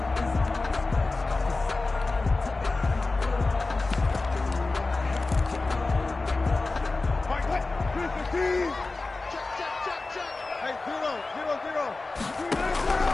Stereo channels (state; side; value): quieter; right; 3.5 dB